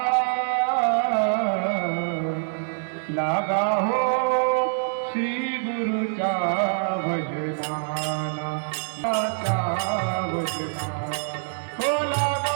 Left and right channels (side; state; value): left; silent; digital silence